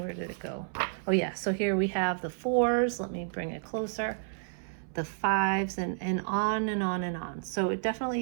did it go? Oh yeah, so here we have the 4s. Let me bring it closer. The 5s, and on and on and on. So it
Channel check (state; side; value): silent; left; 57 dB below the other